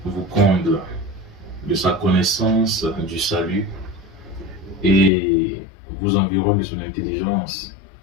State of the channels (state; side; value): drops out; right; at 5.1 s